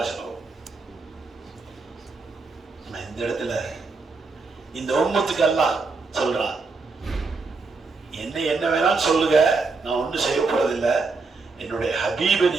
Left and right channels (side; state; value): left; quieter; 4.1 dB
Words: இந்த இடத்துல இந்த உம்மத்துக்கு எல்லாம் சொல்றான், என்ன வேணாலும் சொல்லுங்க, நான் ஒன்றும் செய்ய போறதில்லை. என்னுடைய ஹபீபை